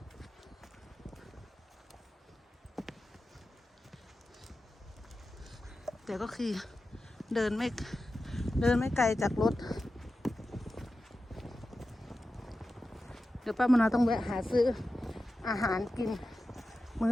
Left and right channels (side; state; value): both; normal; correlation 0.93